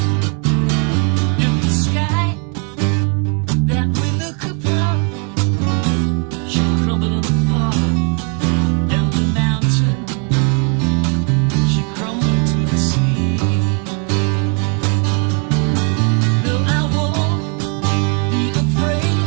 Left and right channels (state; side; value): quieter; left; 39.2 dB